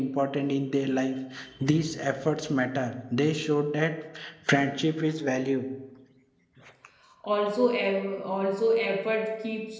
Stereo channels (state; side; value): identical; both; correlation 1.00